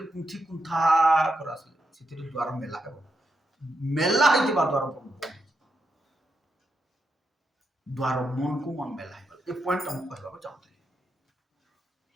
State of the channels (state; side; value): normal; both; correlation 0.83